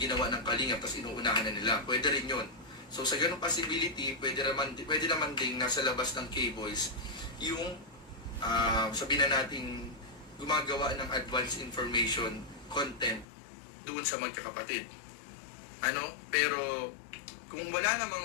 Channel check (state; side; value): drops out; right; at 13.2 s